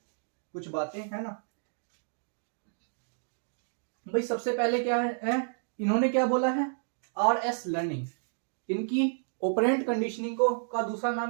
कुछ बातें, है ना। भाई सबसे पहले क्या है, इन्होंने क्या बोला है? RS learning. इनकी ऑपरेंट कंडीशनिंग को का दूसरा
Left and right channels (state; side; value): silent; left; digital silence